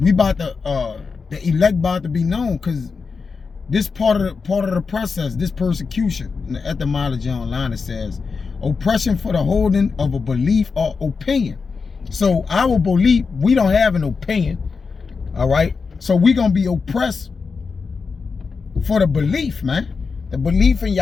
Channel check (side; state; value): right; quieter; 5.0 dB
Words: about to the elect about to be known, because this part of the process, this persecution, in the etymology online, it says, Oppression for the holding of a belief or opinion. So our belief, we don't have an opinion, all right? So we gonna be oppressed for the belief, man. The belief in